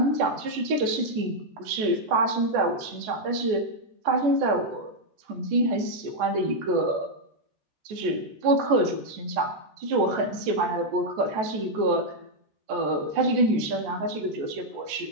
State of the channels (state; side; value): late; left; 14 ms